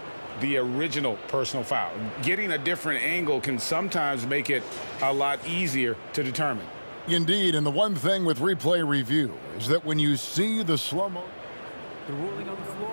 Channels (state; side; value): inverted; both; correlation -1.00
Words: the original personal foul. Getting a different angle can sometimes make it a lot easier to determine. Indeed, and the one thing with replay review is that when you see the slow-mo, the ruling on the